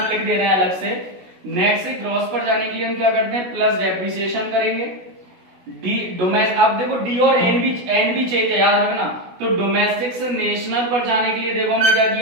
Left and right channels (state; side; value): late; left; 16 ms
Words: लिख दे रहे हैं अलग से, नेट से ग्रॉस पर जाने के लिए हम क्या करते हैं, प्लस डेप्रिसिएशन करेंगे। डी डोमेस्टिक, अब देखो डी और एन भी चेंज है, याद रखना। तो डोमेस्टिक से नेशनल पर जाने के लिए देखो हमने क्या